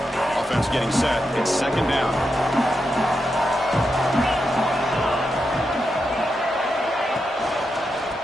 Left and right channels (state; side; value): normal; both; correlation 0.86